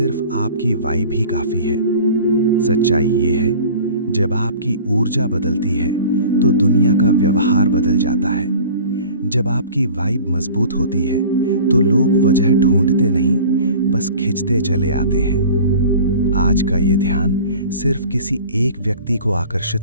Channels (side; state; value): both; inverted; correlation -0.43